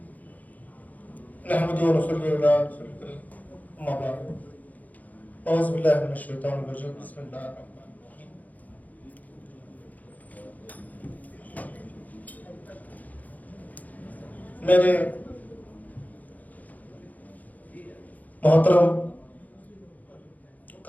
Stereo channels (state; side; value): late; right; 0.078 ms